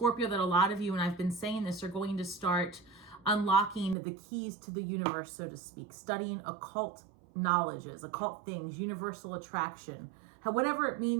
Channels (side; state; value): left; drops out; at 4.0 s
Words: that a lot of you, and I've been saying this, are going to start unlocking the keys to the universe, so to speak, studying occult knowledges, occult things, universal attraction, whatever it